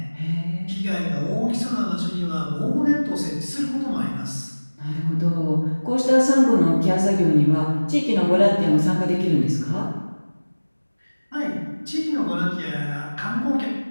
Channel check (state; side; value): inverted; both; correlation -1.00